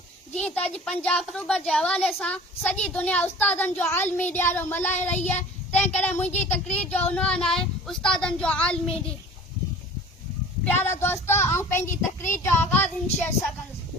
जी तज पंजाब अक्टूबर जे हवाले सां सॼी दुनिया उस्तादनि जो आलमी ॾियारो मल्हाए रही है। तंहिं करे मुंहिंजी तकरीर जो उनवान आहे उस्तादनि जो आलमी ॾींहुं। प्यारा दोस्त, आउं पंहिंजी तकरीर जो आगाज़ इन शेर सां कंदुसि।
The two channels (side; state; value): both; normal; correlation 0.43